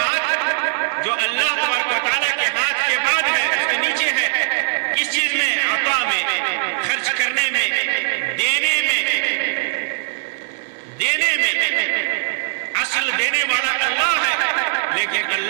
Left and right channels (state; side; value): silent; left; digital silence